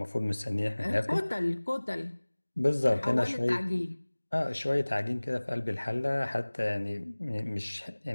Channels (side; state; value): both; inverted; correlation -1.00